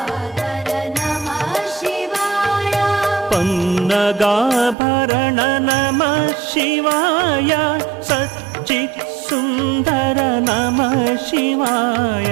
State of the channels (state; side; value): drops out; left; at 4.8 s